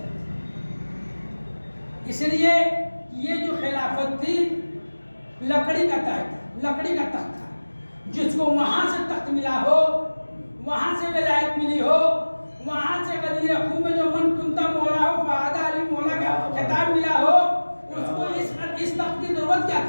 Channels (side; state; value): both; inverted; correlation -1.00